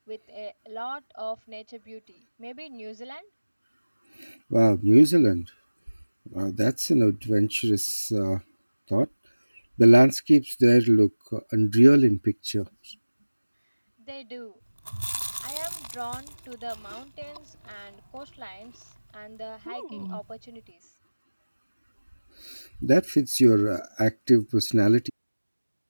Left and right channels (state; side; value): inverted; both; correlation -1.00